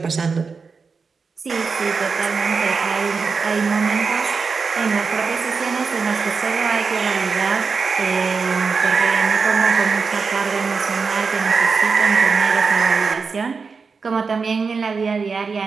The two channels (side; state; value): left; quieter; 5.0 dB